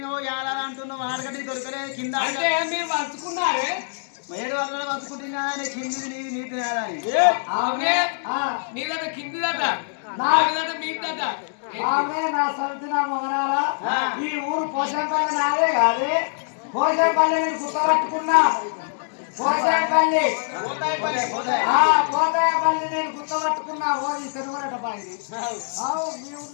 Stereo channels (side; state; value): right; silent; digital silence